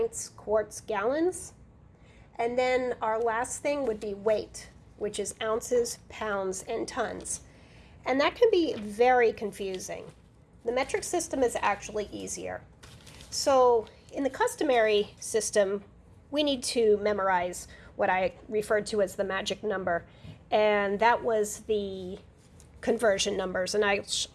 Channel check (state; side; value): identical; both; correlation 1.00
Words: quarts, gallons. And then our last thing would be weight, which is ounces, pounds, and tons. And that can be very confusing. The metric system is actually easier. So in the customary system, we need to memorize what I referred to as the magic number. And that was the conversion numbers. And I'll